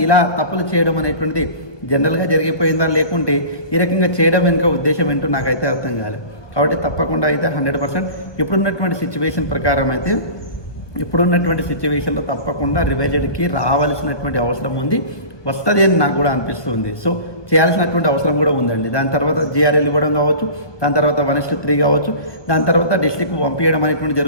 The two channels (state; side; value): late; right; 1.2 ms